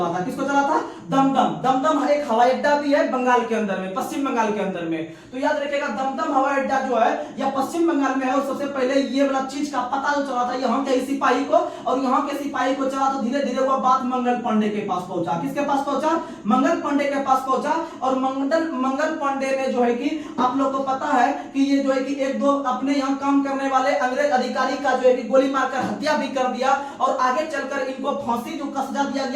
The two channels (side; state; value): both; identical; correlation 1.00